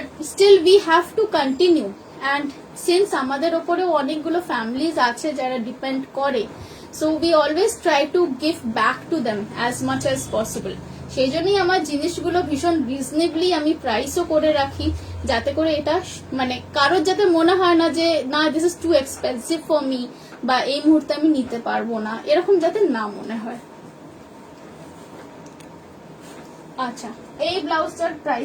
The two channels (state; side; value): identical; both; correlation 1.00